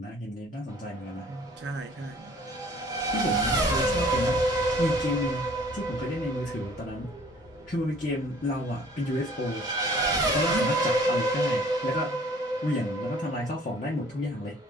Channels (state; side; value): normal; both; correlation 0.54